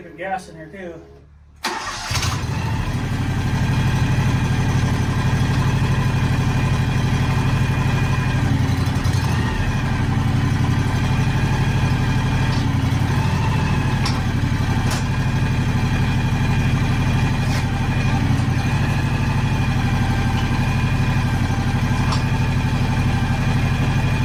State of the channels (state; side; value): identical; both; correlation 1.00